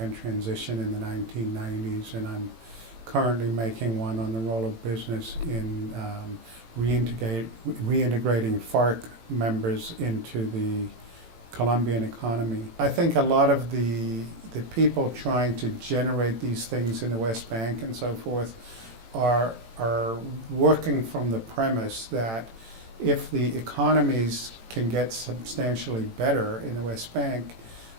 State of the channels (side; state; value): left; late; 18 ms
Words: transition in the 1990s, and I'm currently making one on the role of business in reintegrating FARC members into the Colombian economy. I think a lot of the people trying to generate these things in the West Bank and so forth are working from the premise that if the economies can get substantially better in the West Bank,